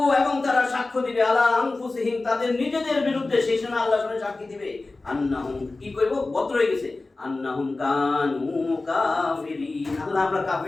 এবং তারা সাক্ষ্য দিবে, আলা আনফুসিহিম, তাদের নিজেদের বিরুদ্ধে। সেই সময় আল্লাহ সামনে সাক্ষী দিবে, আন্নাহুম, কি কইব? বদ্র হয়ে গেছে, আন্নাহুম কানু কাফিরিন, আল্লাহ আমরা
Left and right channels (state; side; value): quieter; right; 3.3 dB